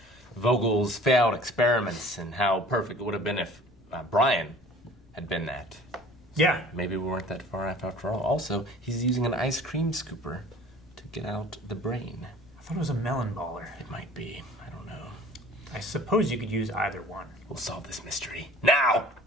Vogel's failed experiments and how perfect it would have been if Brian had been that. Yeah. Maybe we weren't that far off after all. Also, he's using an ice cream scooper to get out the brain. I thought it was a melon baller. It might be. I don't know. I suppose you could use either one. We'll solve this mystery now.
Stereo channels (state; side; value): noise; left; rumble, 27 dB below the sound